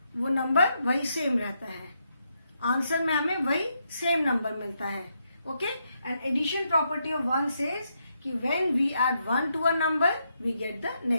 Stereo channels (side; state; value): both; inverted; correlation -0.80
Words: वो नंबर वही सेम रहता है. आंसर में हमें वही सेम नंबर मिलता है. Okay, and addition property of 1 says कि when we add 1 to a number we get the